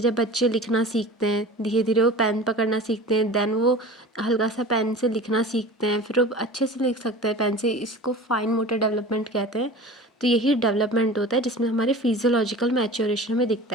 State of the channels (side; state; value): both; normal; correlation 0.37